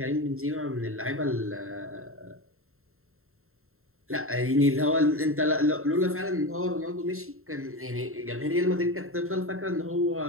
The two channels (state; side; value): late; left; 0.62 ms